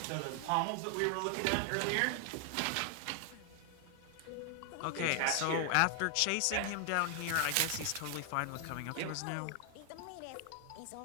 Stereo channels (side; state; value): both; different; correlation 0.00